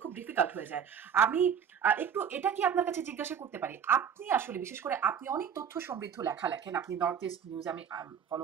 খুব ডিফিকাল্ট হয়ে যায়। আমি একটু এটা কি আপনার কাছে জিজ্ঞাসা করতে পারি, আপনি আসলে বিশেষ করে আপনি অনেক তথ্য সমৃদ্ধ লেখা লেখেন, আপনি নর্থ ইস্ট নিউজ আমি ফলো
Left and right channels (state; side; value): quieter; left; 7.9 dB